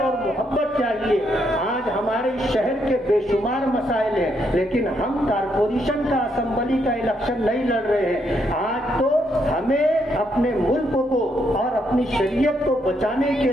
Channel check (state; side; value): normal; both; correlation 0.76